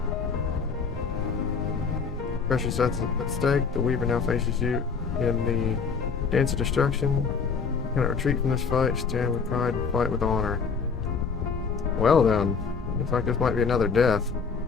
Precious that's at stake. The Weaver now faces you in the dance of destruction. Cannot retreat from this fight. Stand with pride and fight with honor. Well then, looks like this might be another death.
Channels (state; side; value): quieter; right; 5.5 dB